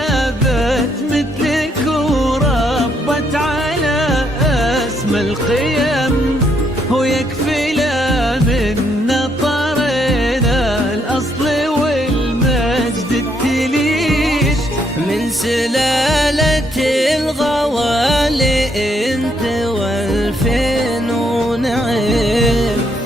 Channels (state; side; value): normal; both; correlation 0.73